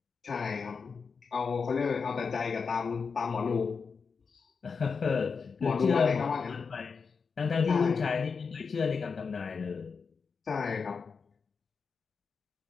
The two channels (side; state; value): right; quieter; 5.3 dB